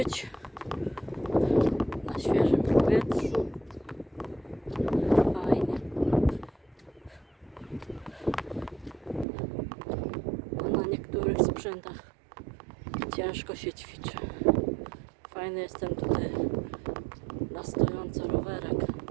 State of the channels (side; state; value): left; drops out; at 9.2 s